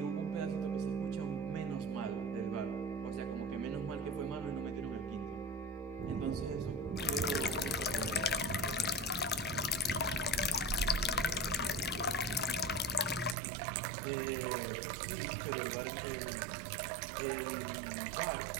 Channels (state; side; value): drops out; left; at 13.4 s